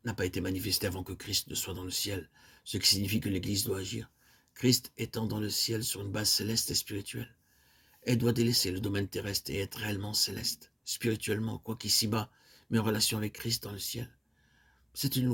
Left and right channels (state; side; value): identical; both; correlation 1.00